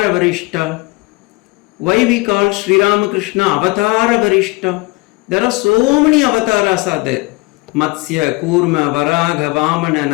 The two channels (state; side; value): quieter; right; 24.3 dB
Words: வரிஷ்டா? Why we call Sri Ramakrishna Avatara Varishta? There are so many avatars are there. Matsya, Kurma, Varaga, Vamana,